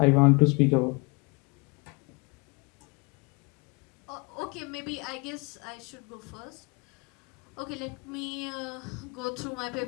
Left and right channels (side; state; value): right; quieter; 29.6 dB